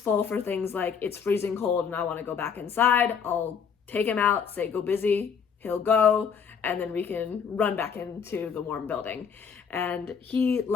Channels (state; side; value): quieter; right; 6.7 dB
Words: for things like it's freezing cold and I want to go back inside. I'll take him out, say go busy, he'll go, and then we can run back into the warm building. And he